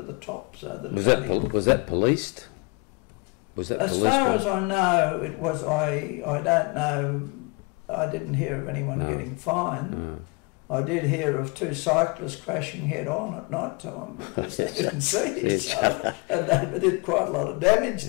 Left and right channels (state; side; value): quieter; right; 30.2 dB